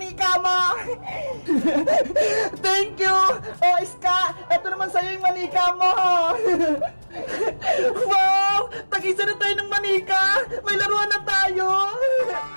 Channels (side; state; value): both; inverted; correlation -1.00